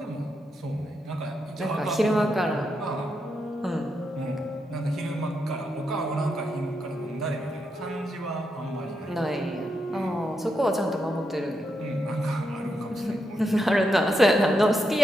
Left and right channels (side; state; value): both; normal; correlation 0.83